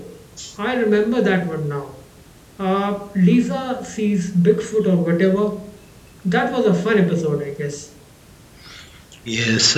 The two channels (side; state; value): both; identical; correlation 1.00